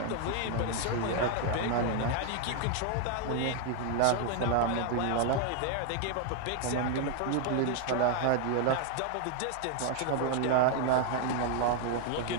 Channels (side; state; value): both; different; correlation 0.01